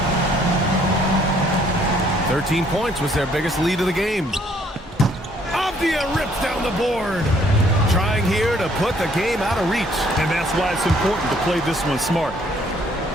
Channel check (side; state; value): both; normal; correlation 0.64